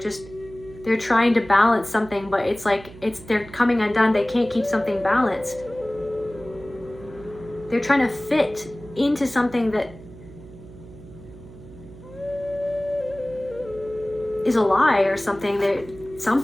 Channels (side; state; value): right; noise; hum, 18 dB below the sound